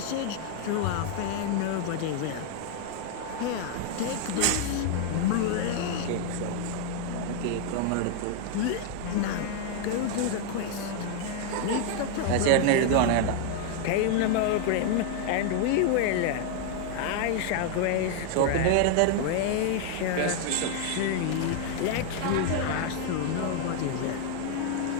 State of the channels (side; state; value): both; different; correlation 0.00